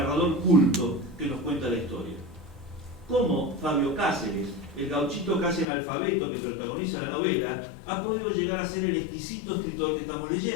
culto que nos cuenta la historia. Cómo Fabio Cáceres, el gauchito casi analfabeto que protagoniza la novela, ha podido llegar a ser el exquisito escritor que estamos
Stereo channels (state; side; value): drops out; right; at 5.7 s